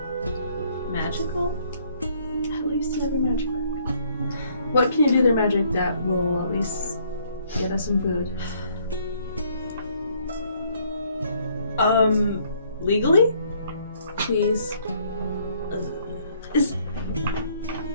magical? At least you have your magic back. What can you do with your magic that will at least get us some food? Legally? Please. Did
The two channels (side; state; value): both; inverted; correlation -0.65